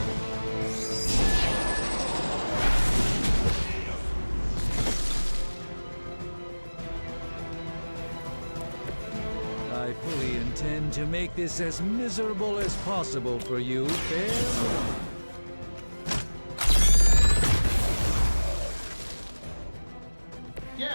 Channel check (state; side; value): inverted; both; correlation -1.00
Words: I fully intend to make this as miserable as possible for you, fair?